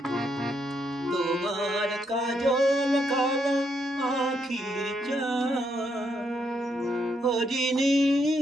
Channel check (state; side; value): normal; both; correlation 0.77